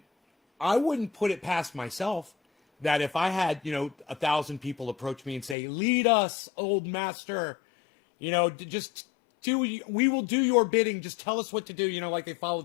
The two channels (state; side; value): drops out; right; at 5.6 s